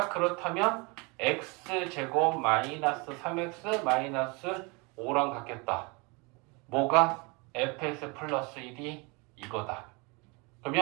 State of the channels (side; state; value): left; quieter; 29.1 dB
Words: 그렇다면 x제곱 마이너스 3x 마이너스 5랑 같겠다. 뭐가? fx 플러스 1이 이거다.